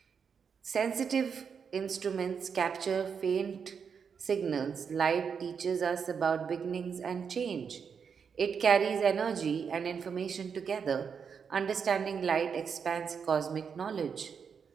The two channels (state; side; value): quieter; left; 6.5 dB